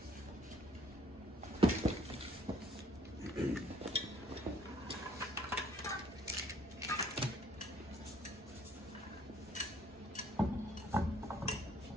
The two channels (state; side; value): normal; both; correlation 0.61